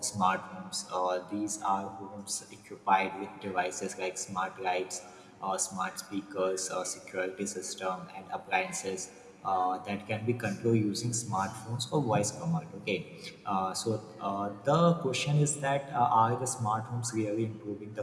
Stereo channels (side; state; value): both; identical; correlation 1.00